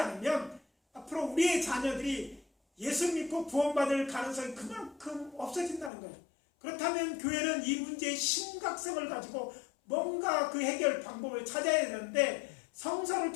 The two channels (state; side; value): drops out; right; at 5.9 s